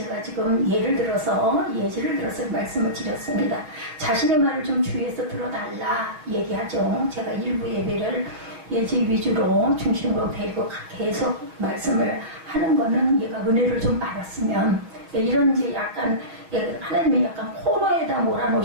지금 예를 들어서 말씀을 드렸습니다. 자신의 말을 좀 주위에서 들어달라 얘기하죠. 제가 일부 예배를 예지 위주로 중심으로 데리고 계속 말씀을 하는 거는 얘가 은혜를 좀 받았으면, 이런 이제 약간 하나님이 약간 코너에다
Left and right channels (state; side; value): late; left; 6.5 ms